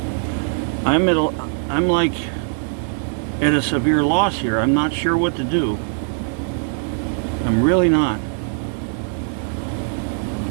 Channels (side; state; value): left; silent; 65 dB below the other